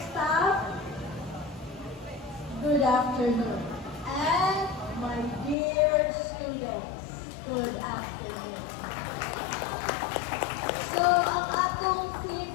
staff, good afternoon. And my dear students, good afternoon. So, ang atong theme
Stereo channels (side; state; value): right; drops out; at 5.6 s